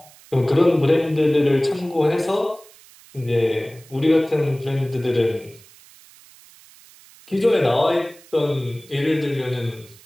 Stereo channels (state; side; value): noise; right; hiss, 24 dB below the sound